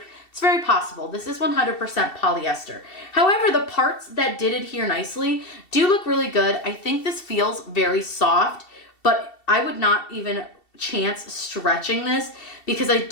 It's very possible. This is 100% polyester. However, the parts that did adhere nicely do look really good. I think this feels very soft, but I would not even chance stretching this, because I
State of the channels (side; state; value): right; late; 2.7 ms